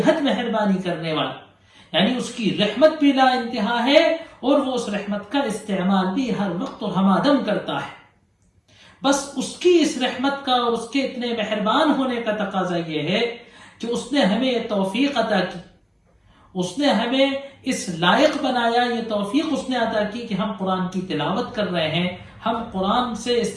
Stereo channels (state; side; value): identical; both; correlation 1.00